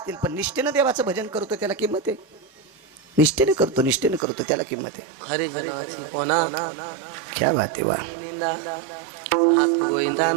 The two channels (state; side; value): drops out; left; at 4.2 s